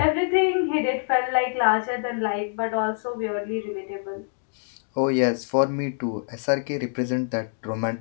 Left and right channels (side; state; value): right; silent; digital silence